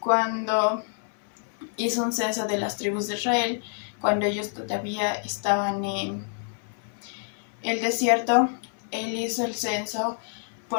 hizo un censo de las tribus de Israel, cuando ellos todavía estaban en el desierto. Él hizo el censo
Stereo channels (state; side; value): silent; right; 60 dB below the other